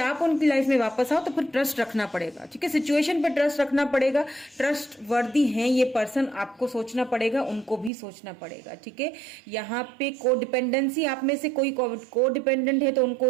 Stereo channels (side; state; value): left; drops out; at 7.9 s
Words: उनकी लाइफ में वापस आओ, तो फिर ट्रस्ट रखना पड़ेगा, ठीक है। सिचुएशन पे ट्रस्ट रखना पड़ेगा, ट्रस्ट वर्दी हैं ये पर्सन, आपको सोचना पड़ेगा, उनको भी सोचना पड़ेगा, ठीक है। यहाँ पे को डिपेंडेंसी, आप में से कोई को डिपेंडेंट है तो उनको